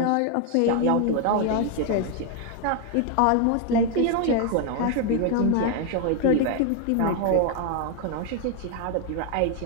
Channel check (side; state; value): both; different; correlation 0.00